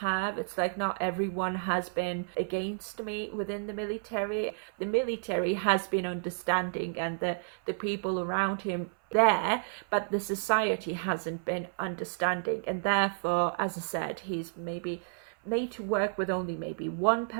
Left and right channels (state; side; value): silent; left; 57 dB below the other